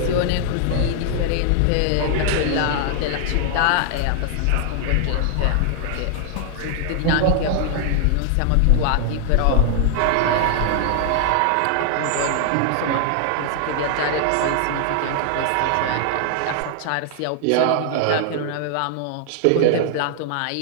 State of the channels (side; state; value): both; different; correlation 0.00